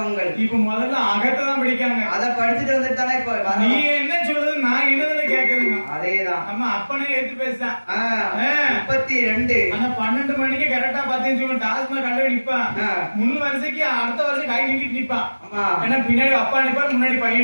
இப்ப முதல்ல அகத்தை தான் படிக்காங்க. அத படிச்சுட்டு வந்துட்டு தானே இப்ப நீ என்ன சொல்றது நான் என்னதுல கேக்குறேங்க. அதேதான் நம்ம அப்பனே எடுத்து பேசுறேன். 32 ஆனா 12 மணிக்கு கரெக்டா பாத்தீங்கன்னு சொல்லி டாஸ்மாக் கண்டு நிப்பான். முன் வருஷத்துக்கு அடுத்த வருஷம் கை நீட்டிட்டு நிப்பான். ஏன்னா பின்னாடி அப்பா நிப்பான், முன்னாடி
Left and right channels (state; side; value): inverted; both; correlation -1.00